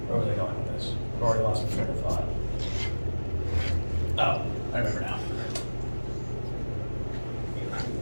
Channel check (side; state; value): both; inverted; correlation -1.00